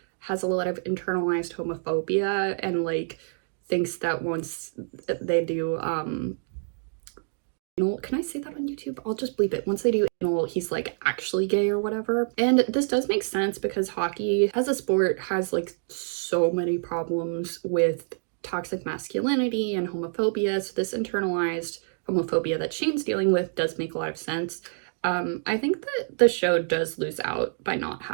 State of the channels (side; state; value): left; silent; digital silence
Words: has a lot of internalized homophobia and, like, thinks that once they do can I say that on YouTube? I'll just bleep it. Once they do anal, he's, like, actually gay or whatever. And this does make sense because hockey as a sport has, like, so many problems with toxic masculinity and homophobia. So this internalized homophobia that Shane's dealing with does make a lot of sense. I think that the show does lose out by not